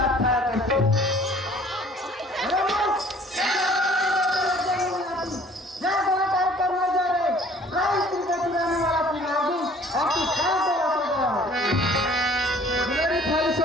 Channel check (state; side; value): normal; both; correlation 0.54